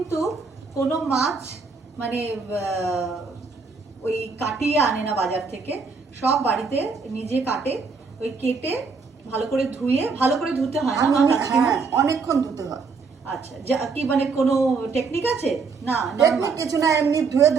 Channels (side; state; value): left; quieter; 4.8 dB